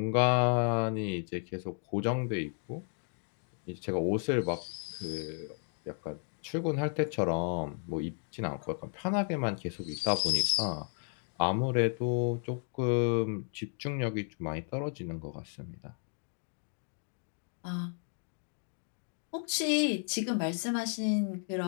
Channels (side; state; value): right; silent; 55 dB below the other